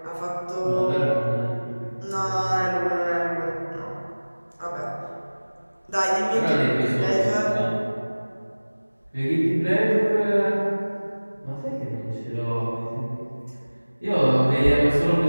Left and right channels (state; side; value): inverted; both; correlation -1.00